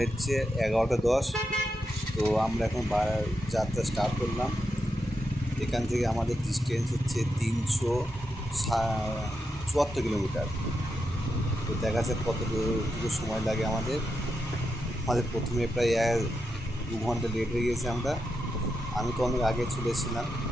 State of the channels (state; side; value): normal; both; correlation 0.86